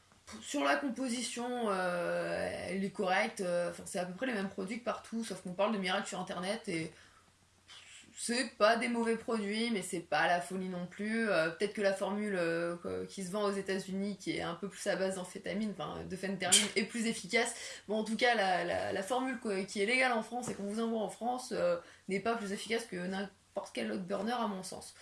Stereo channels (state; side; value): identical; both; correlation 1.00